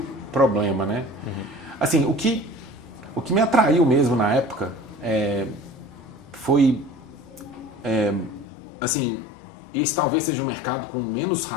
problema, né? Assim, o que me atraiu mesmo na época foi, assim, esse talvez seja um mercado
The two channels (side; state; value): right; drops out; at 8.5 s